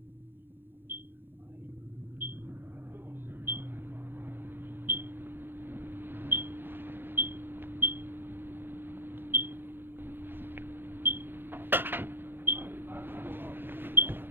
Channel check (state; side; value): late; left; 0.10 ms